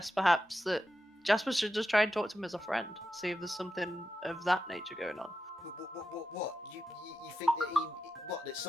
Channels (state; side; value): normal; both; correlation 0.89